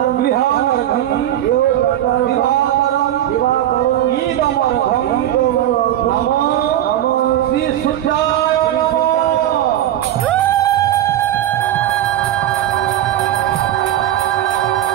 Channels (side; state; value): left; quieter; 12.3 dB